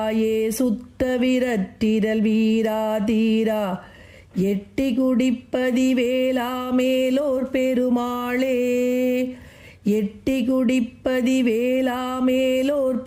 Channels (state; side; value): identical; both; correlation 1.00